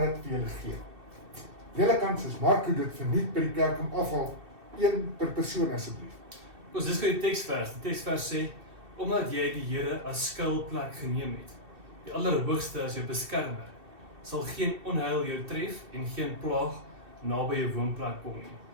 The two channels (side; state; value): left; late; 2.6 ms